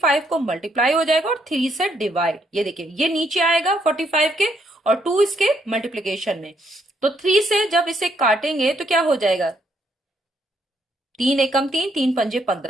को मल्टीप्लाई हो जाएगा और 3 से डिवाइड। ये देखिए ये नीचे आएगा 45 के और 2 इसके मल्टीप्लीकेशन में, तो 3 से जब इसे काटेंगे तो क्या हो जाएगा? 3 एकम 3, 3 पंजे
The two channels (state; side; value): normal; both; correlation 0.73